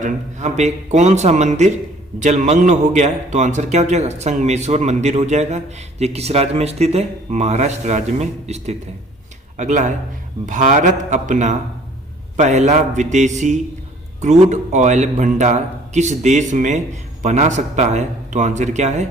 यहाँ पे कौन सा मंदिर जलमग्न हो गया है? तो आंसर क्या हो जाएगा? संगमेश्वर मंदिर हो जाएगा। ये किस राज्य में स्थित है? महाराष्ट्र राज्य में स्थित है। अगला है, भारत अपना पहला विदेशी क्रूड ऑयल भंडार किस देश में बना सकता है? तो आंसर क्या है?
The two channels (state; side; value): normal; both; correlation 0.55